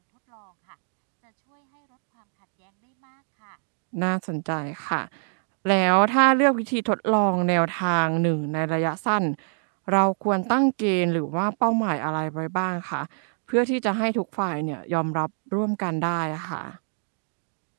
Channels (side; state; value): left; silent; digital silence